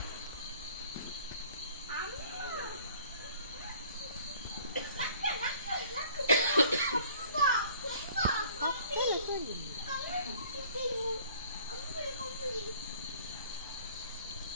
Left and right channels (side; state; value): both; inverted; correlation -0.53